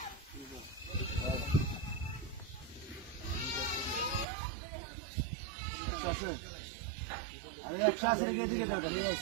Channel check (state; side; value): drops out; left; at 4.2 s